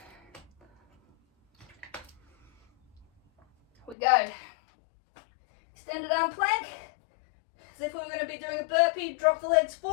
we go. Extended arm plank, as if we were going to be doing a burpee. Drop the legs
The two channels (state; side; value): drops out; right; at 4.0 s